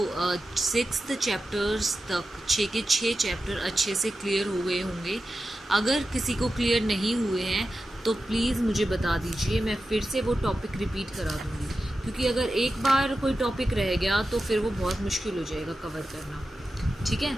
6th चैप्टर्स तक 6 के 6 चैप्टर अच्छे से क्लियर हो गए होंगे। अगर किसी को क्लियर नहीं हुए हैं तो प्लीज़ मुझे बता दीजिए, मैं फिर से वो टॉपिक रिपीट करा दूँगी, क्योंकि अगर एक बार कोई टॉपिक रह गया तो फिर वो बहुत मुश्किल हो जाएगा कवर करना। ठीक है,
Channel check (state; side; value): normal; both; correlation 0.92